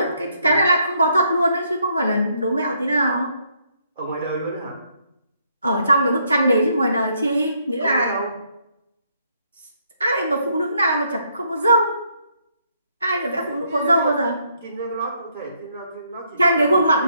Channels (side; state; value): both; inverted; correlation -0.72